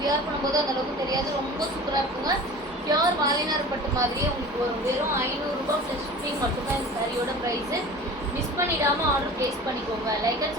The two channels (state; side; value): normal; both; correlation 0.39